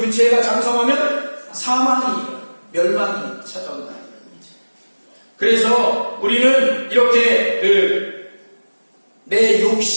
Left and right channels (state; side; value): inverted; both; correlation -1.00